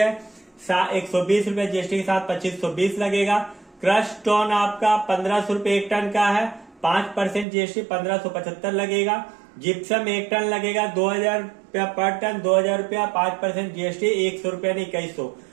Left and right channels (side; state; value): left; drops out; at 7.5 s